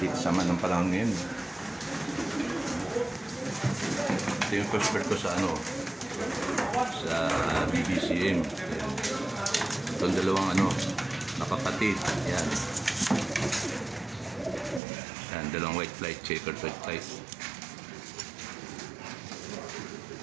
sama ng panahon ngayon. Ito yung first bird ko sa sa BBCM. Itong dalawang nakapatid. Yan. Yan, dalawang white flight, checkered white flight.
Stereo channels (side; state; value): left; drops out; at 14.8 s